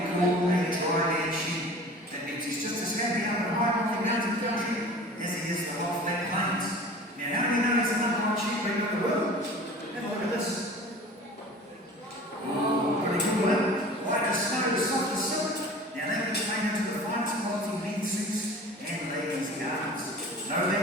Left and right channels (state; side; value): normal; both; correlation 0.41